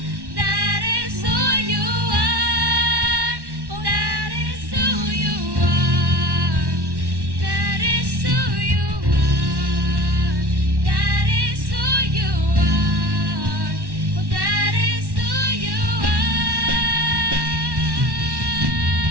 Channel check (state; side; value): late; left; 1.1 ms